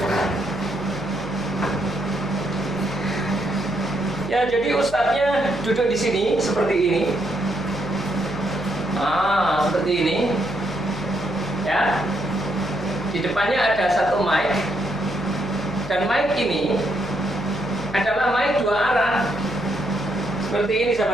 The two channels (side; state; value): left; noise; hum, 14 dB below the sound